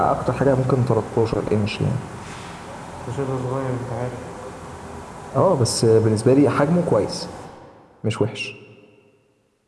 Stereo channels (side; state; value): both; identical; correlation 1.00